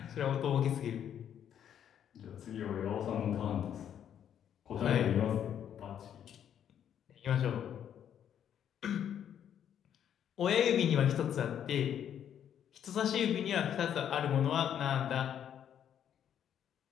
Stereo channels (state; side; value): quieter; right; 9.5 dB